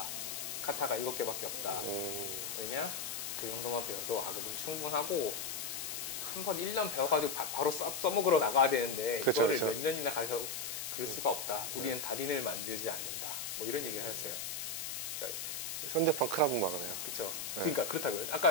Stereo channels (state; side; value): noise; left; hiss, 4 dB below the sound